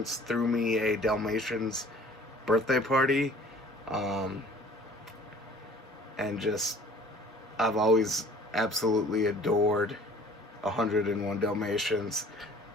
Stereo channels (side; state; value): both; normal; correlation 0.50